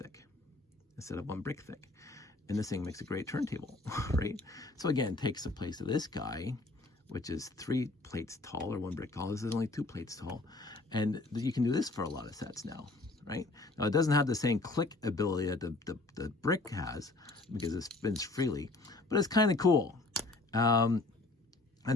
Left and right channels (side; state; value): right; quieter; 3.1 dB